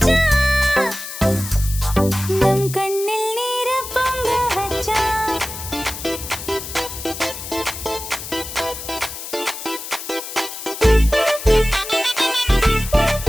நம் கண்ணில் நீர பொங்க வச்சான்.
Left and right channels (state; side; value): noise; left; hiss, 9 dB below the sound